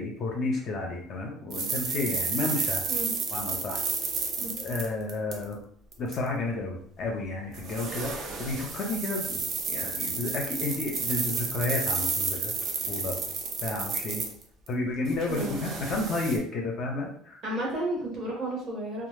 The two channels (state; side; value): normal; both; correlation 0.48